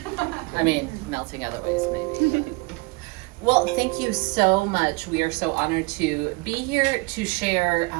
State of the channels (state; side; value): quieter; left; 26.5 dB